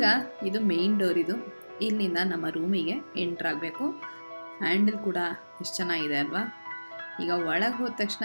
ಇದು ಮೇಯ್ನ್ ಡೋರ್, ಇದು ಇಲ್ಲಿಂದ ನಮ್ಮ ರೂಮಿಗೆ ಎಂಟ್ರ್ ಆಗಬೇಕು. ಹ್ಯಾಂಡಲ್ ಕೂಡ ಎಷ್ಟು ಚೆನ್ನಾಗಿದೆ ಅಲ್ವಾ. ಈಗ ಒಳಗೆ ಹೋದ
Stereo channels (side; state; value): both; inverted; correlation -1.00